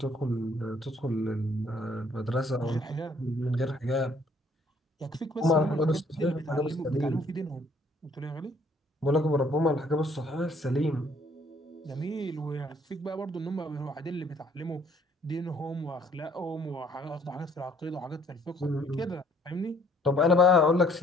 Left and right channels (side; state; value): both; normal; correlation 0.62